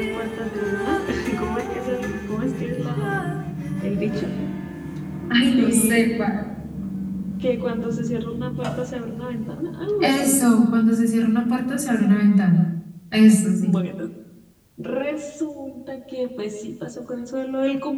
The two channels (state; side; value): identical; both; correlation 1.00